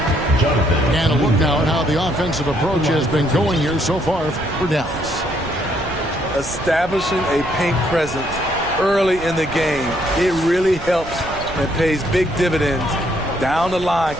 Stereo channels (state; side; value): noise; right; rumble, 13 dB below the sound